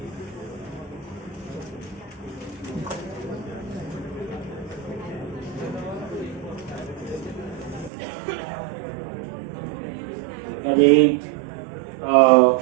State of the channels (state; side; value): drops out; left; at 7.9 s